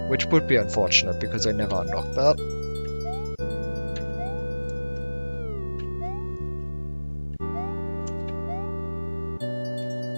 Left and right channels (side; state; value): both; inverted; correlation -1.00